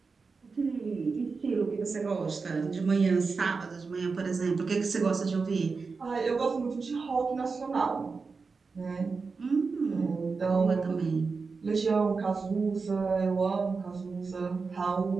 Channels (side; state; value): left; quieter; 4.6 dB